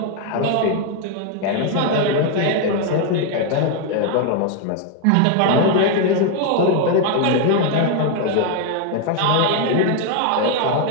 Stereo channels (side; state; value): both; different; correlation 0.01